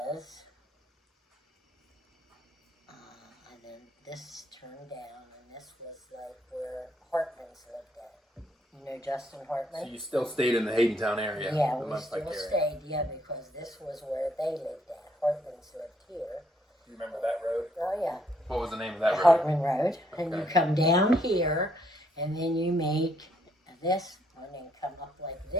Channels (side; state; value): both; normal; correlation 0.71